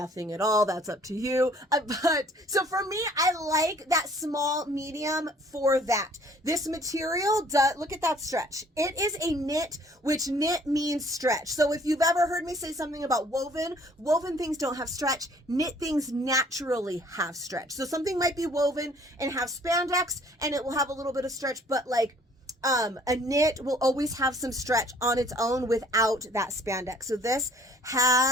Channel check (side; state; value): both; normal; correlation 0.57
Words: at all. That's up to you. But so for me, I like that small medium for that. This material does, look at that stretch. It is a knit, which knit means stretch. So if you've ever heard me say something about woven things don't have stretch. Knit things naturally have stretch. So something might be woven and have spandex and it will have a little bit of stretch, but like a knit will always have some stretch on its own without that spandex. So this